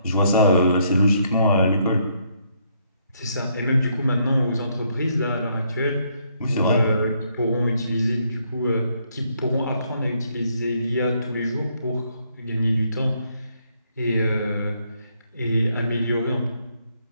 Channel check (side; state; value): both; inverted; correlation -0.72